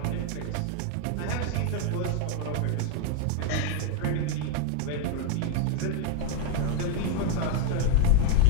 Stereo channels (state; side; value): different; both; correlation 0.01